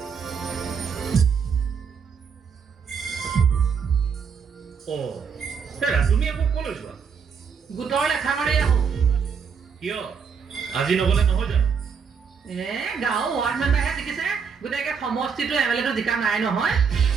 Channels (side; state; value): left; quieter; 6.3 dB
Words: তুমি আকৌ ক'লৈ যোৱা? গোটৰ লেখা মাৰি আহো। কিয় আজি নগলে নহয় জানো? গাঁও ৱাৰ্ড মেম্বাৰহে জিকিছে, গোটেই সমষ্টিটো MLA জিকা নাই নহয়।